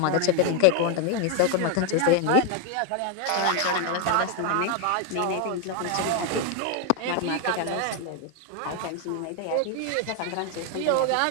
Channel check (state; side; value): different; both; correlation 0.01